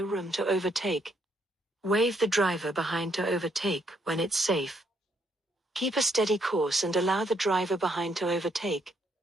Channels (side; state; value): both; normal; correlation 0.72